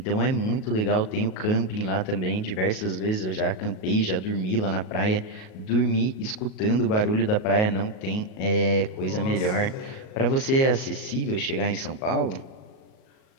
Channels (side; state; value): right; late; 37 ms